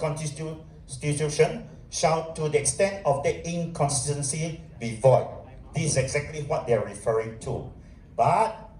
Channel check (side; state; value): both; identical; correlation 1.00